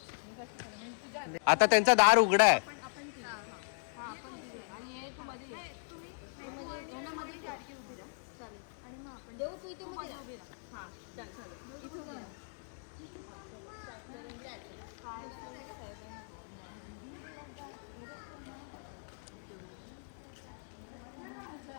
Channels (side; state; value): right; silent; digital silence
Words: आता त्यांचा दार उघडा आहे.